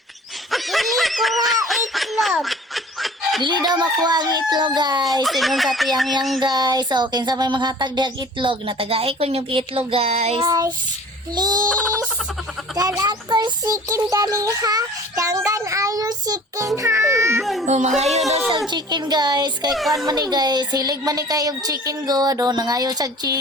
Dili ko nga itlog. Dili daw makuha ang itlog guys. Ingon sa tiyang guys. So, kinsa may manghatag diag itlog. Natagay ko yung itlog guys. Guys, please. Dan ako sikin dali ha. Tanggan ayo sikin ha. Oh, mangayo daw siyang chicken guys. Kay kuan man ni guys. Hilig man ni kayong chicken god. Oh, nangayo siyang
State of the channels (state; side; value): normal; both; correlation 0.45